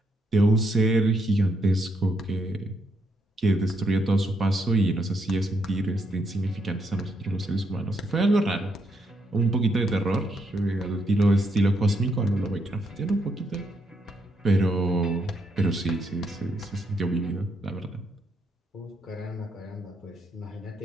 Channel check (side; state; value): both; normal; correlation 0.77